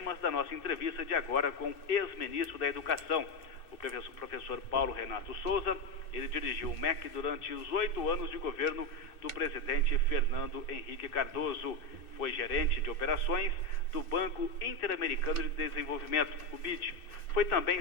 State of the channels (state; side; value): late; right; 2.6 ms